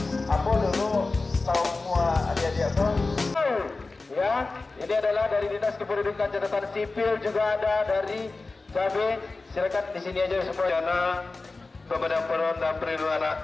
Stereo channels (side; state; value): right; quieter; 3.6 dB